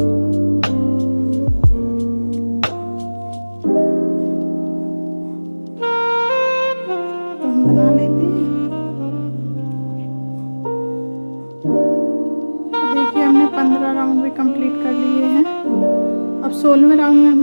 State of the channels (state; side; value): inverted; both; correlation -1.00